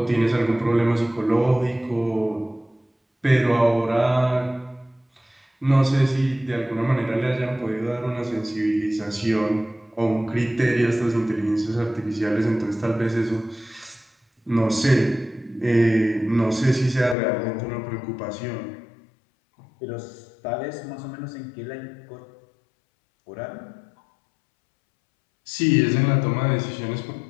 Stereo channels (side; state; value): right; drops out; at 17.2 s